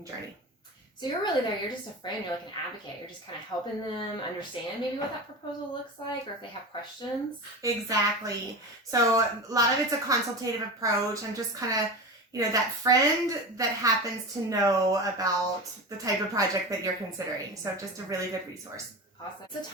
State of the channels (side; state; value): both; normal; correlation 0.27